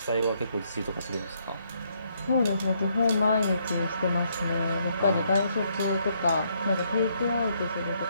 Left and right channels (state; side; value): inverted; both; correlation -0.73